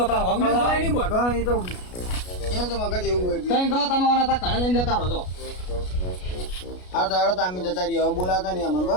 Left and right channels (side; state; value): right; late; 33 ms